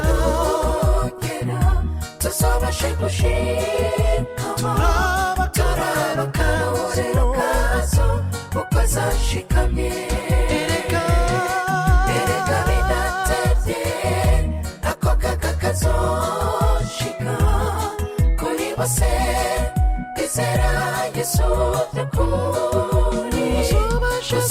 nugera tuzabashe gushikama, turaba akarorero kazo uko zashikamye. Erega bidatevye ako kaga kazoshika kuri bose bizera yesu by'ukuri.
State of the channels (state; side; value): identical; both; correlation 1.00